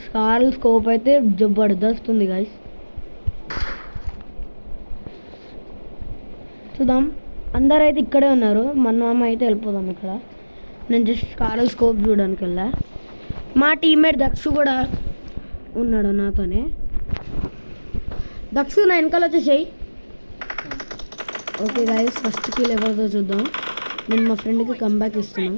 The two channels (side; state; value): both; inverted; correlation -1.00